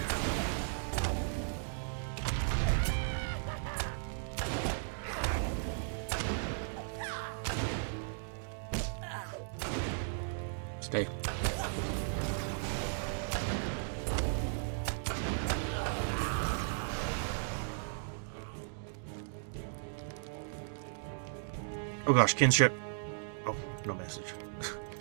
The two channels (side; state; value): left; silent; digital silence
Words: Stay. Oh gosh, kinship. Oh, no message.